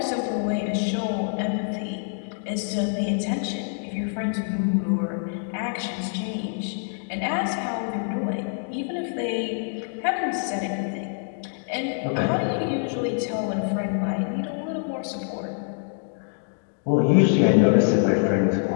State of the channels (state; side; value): silent; right; digital silence